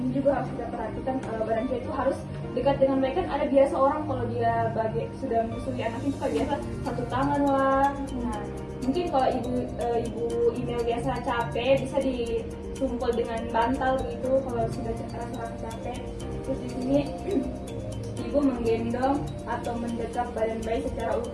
juga harus kita perhatikan badan dia itu harus dekat dengan bayi. Kan ada biasa orang kalau dia sudah menyusui anaknya suka biasa satu tangan lah. Nah, mungkin kalau ibu email biasa capek bisa ditumpul dengan bantal begitu kalau sudah rasa capek. Terus di sini ibu menggendong atau mendekap badan bayi secara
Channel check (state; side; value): identical; both; correlation 1.00